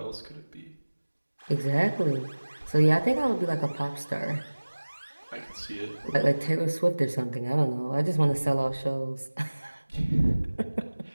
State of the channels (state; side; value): inverted; both; correlation -1.00